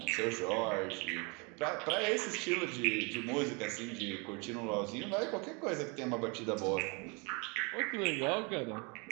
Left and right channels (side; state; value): left; quieter; 31.0 dB